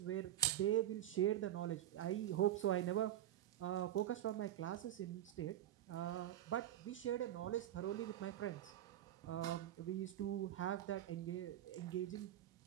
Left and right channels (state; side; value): quieter; left; 12.2 dB